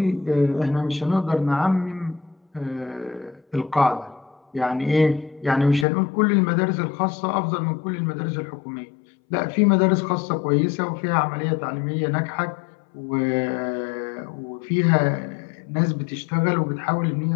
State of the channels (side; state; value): right; drops out; at 5.9 s